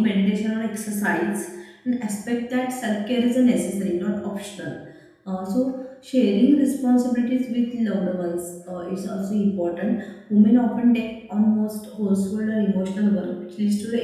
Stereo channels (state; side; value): identical; both; correlation 1.00